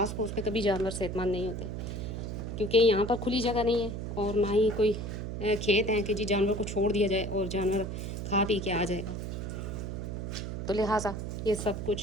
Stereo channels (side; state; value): right; noise; hum, 5 dB below the sound